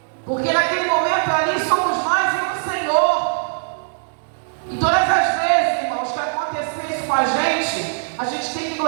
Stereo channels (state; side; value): silent; left; digital silence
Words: porque naquele momento ali somos nós e o Senhor. E todas as vezes, irmãos, que acontecer isso com a gente tem que